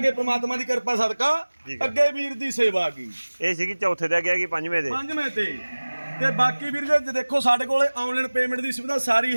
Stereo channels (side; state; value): both; inverted; correlation -1.00